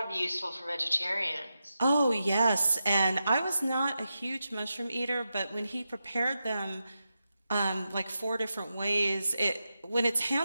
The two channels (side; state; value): both; inverted; correlation -0.89